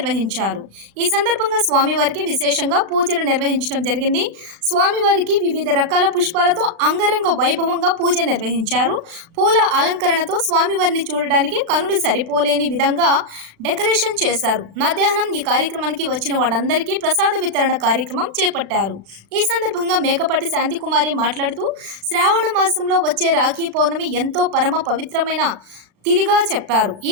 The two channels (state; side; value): late; left; 36 ms